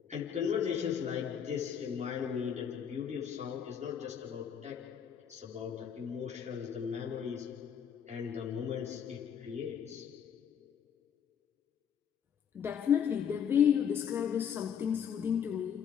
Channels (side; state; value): right; quieter; 8.1 dB